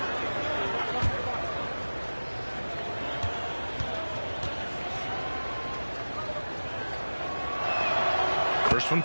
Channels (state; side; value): inverted; both; correlation -1.00